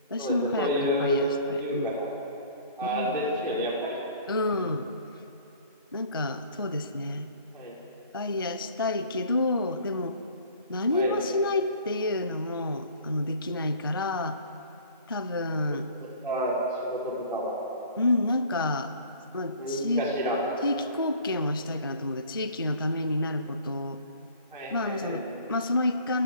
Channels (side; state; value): both; inverted; correlation -0.49